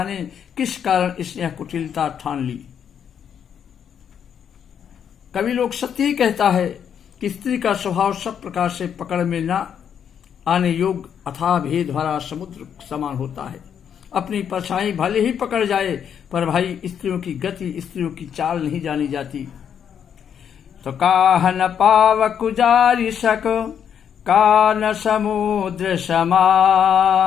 किस कारण इसने यह कुटिलता ठान ली। कवि लोग सत्य ही कहता है कि स्त्री का स्वभाव सब प्रकार से पकड़ में न आने योग्य अथाह भेद भरा समुद्र समान होता है। अपनी परछाई भले ही पकड़ जाए पर भाई स्त्रियों की गति, स्त्रियों की चाल नहीं जानी जाती। तो काहन पाव कुजारी सक कान समुद्र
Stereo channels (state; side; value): quieter; right; 8.3 dB